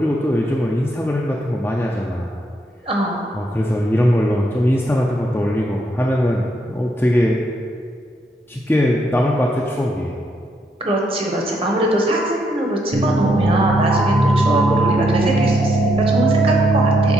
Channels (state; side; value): normal; both; correlation 0.76